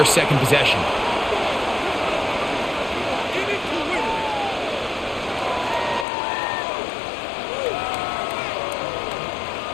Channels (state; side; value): drops out; right; at 6.1 s